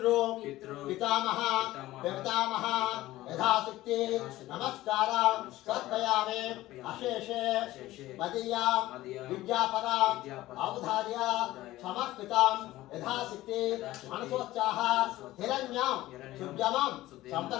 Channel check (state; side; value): quieter; right; 16.4 dB